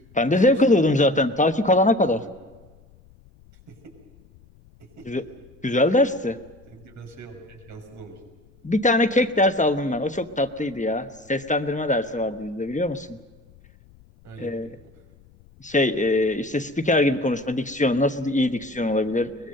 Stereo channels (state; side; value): noise; left; rumble, 28 dB below the sound